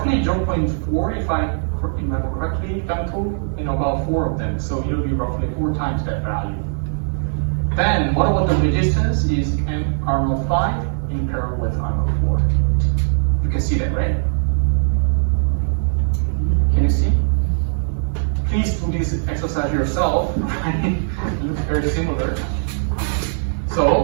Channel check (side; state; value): left; silent; 66 dB below the other